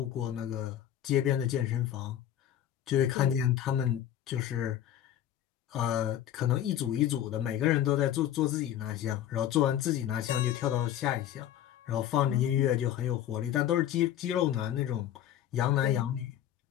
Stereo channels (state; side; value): quieter; right; 11.2 dB